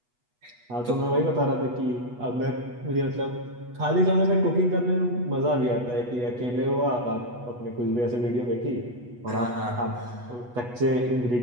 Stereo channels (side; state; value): left; late; 8.2 ms